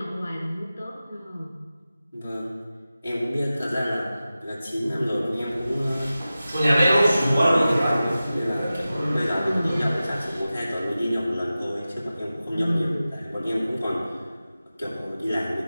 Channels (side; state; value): both; inverted; correlation -0.95